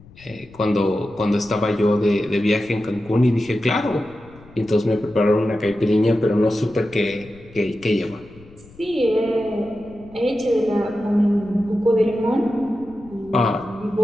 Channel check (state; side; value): noise; left; rumble, 23 dB below the sound